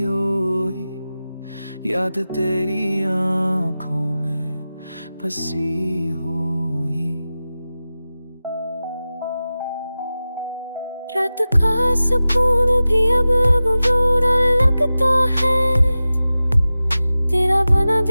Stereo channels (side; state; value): both; inverted; correlation -0.95